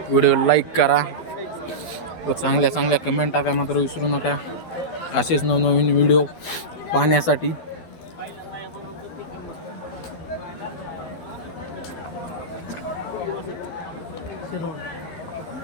व्हिडिओ लाईक करा व चांगल्या कमेंट टाका मात्र विसरू नका. असेच नवनवीन व्हिडिओ पाहण्यासाठी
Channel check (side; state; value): right; late; 12 ms